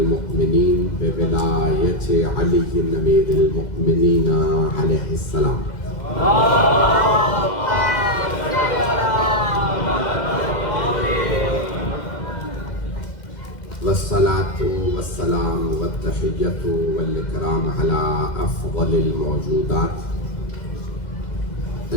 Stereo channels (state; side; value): late; right; 2.1 ms